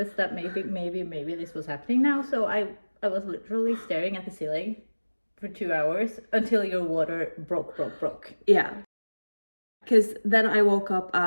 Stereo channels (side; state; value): both; inverted; correlation -1.00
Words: that maybe this was happening now. So I was literally staring at the ceiling for 2 hours until your water broke. Yeah. Because then I woke up